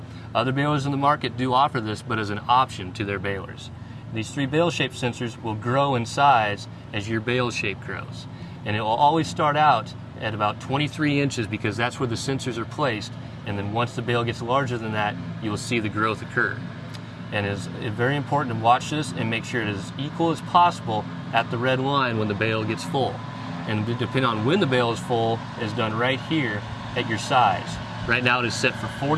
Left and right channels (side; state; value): both; identical; correlation 1.00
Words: Other balers in the market do offer this, but as an option to their balers. These 3 bale shape sensors will grow in size as your bale shape grows. And it will always start out at about 23 inches because that's where the sensors are placed, and then once the bale gets larger than that, you will see the growth occur. And it's very important to watch this and make sure it is as equal as possible at the red line when the bale gets full. And depending on when the bale is full, is done right here at your size. Right now it is set for